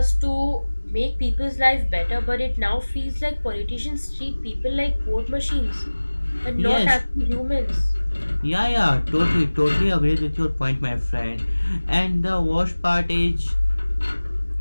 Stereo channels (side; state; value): both; inverted; correlation -1.00